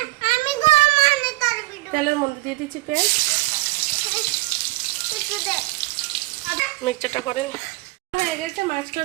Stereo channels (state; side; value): quieter; left; 21.3 dB